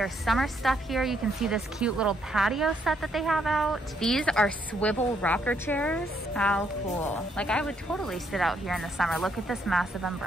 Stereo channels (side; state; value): both; normal; correlation 0.72